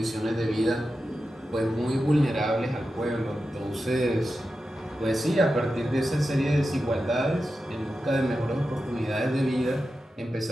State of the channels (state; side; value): normal; both; correlation 0.91